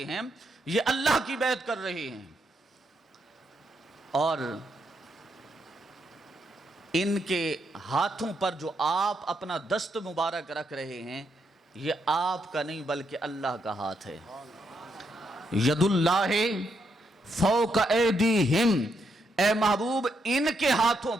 ہیں یہ اللہ کی بیعت کر رہے ہیں اور ان کے ہاتھوں پر جو آپ اپنا دست مبارک رکھ رہے ہیں یہ آپ کا نہیں بلکہ اللہ کا ہاتھ ہے. ید اللہ فوق ایدیہم اے محبوب ان کے ہاتھوں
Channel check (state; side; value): normal; both; correlation 0.79